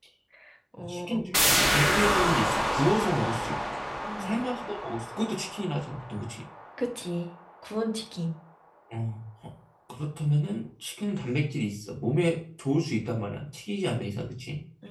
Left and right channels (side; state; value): both; identical; correlation 1.00